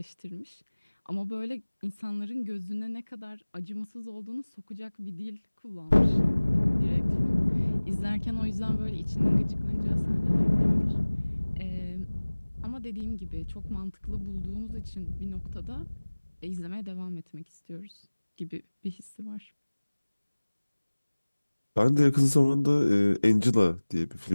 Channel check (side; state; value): both; inverted; correlation -1.00